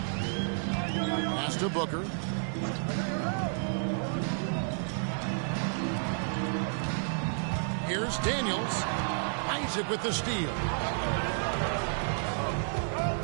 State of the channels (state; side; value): silent; left; 57 dB below the other